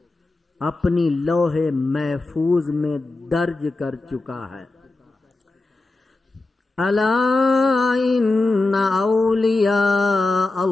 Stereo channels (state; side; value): quieter; right; 3.2 dB